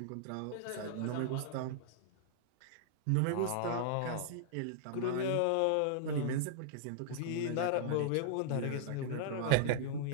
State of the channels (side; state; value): both; different; correlation -0.01